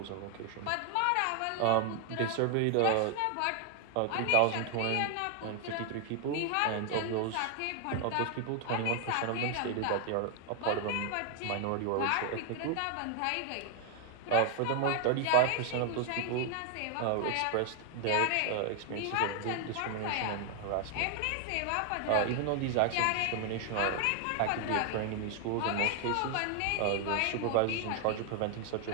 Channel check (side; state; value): both; different; correlation 0.00